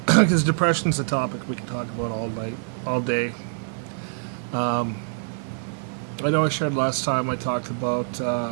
because depression's a topic we can talk about all night, all day. I know I shared last time I talked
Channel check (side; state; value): left; silent; 62 dB below the other